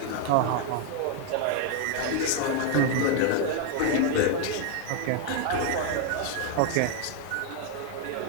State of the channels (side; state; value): both; different; correlation 0.00